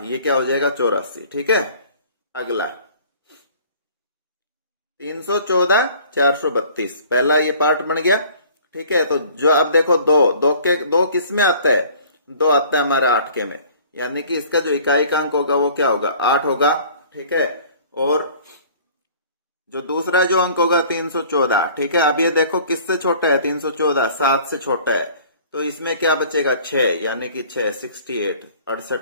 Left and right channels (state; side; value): inverted; both; correlation -0.51